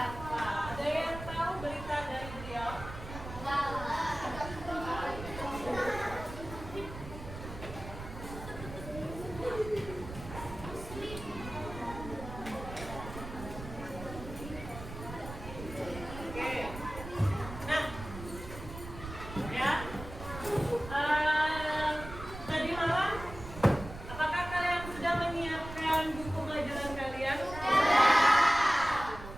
Ada yang tahu berita dari beliau?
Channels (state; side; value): noise; right; rumble, 11 dB below the sound